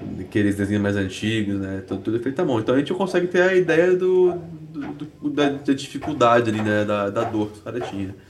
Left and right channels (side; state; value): both; identical; correlation 1.00